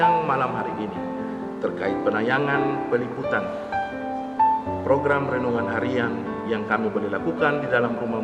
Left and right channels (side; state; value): both; identical; correlation 1.00